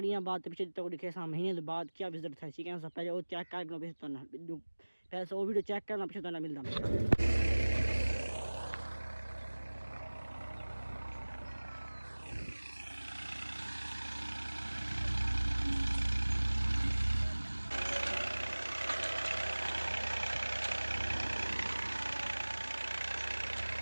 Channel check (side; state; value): both; inverted; correlation -1.00